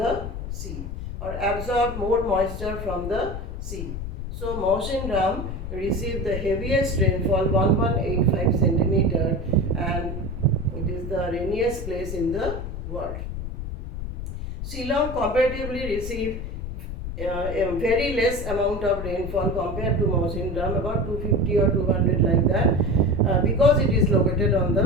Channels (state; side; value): noise; left; rumble, 6 dB below the sound